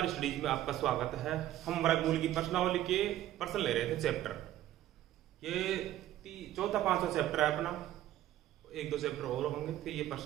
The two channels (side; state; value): left; quieter; 13.3 dB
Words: स्टडीज में आपका स्वागत है। हम वर्गमूल की प्रश्नावली के प्रश्न ले रहे थे चैप्टर। ये चौथा पांचवा चैप्टर है अपना। एक दो चैप्टर और होंगे, फिर ये